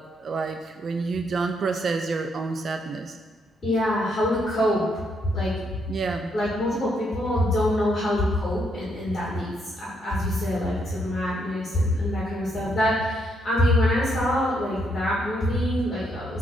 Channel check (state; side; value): normal; both; correlation 0.75